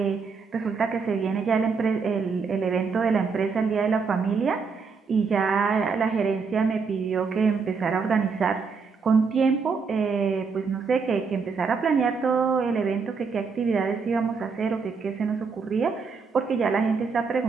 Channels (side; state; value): left; quieter; 5.2 dB